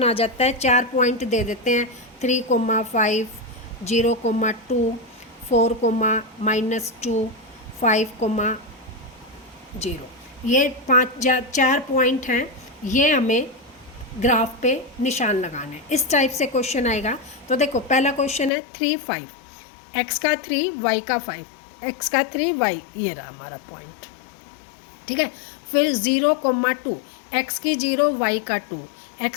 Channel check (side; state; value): right; drops out; at 18.5 s